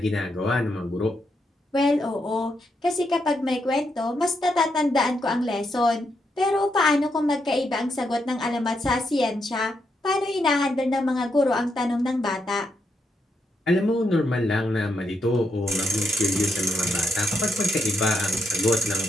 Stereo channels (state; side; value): normal; both; correlation 0.80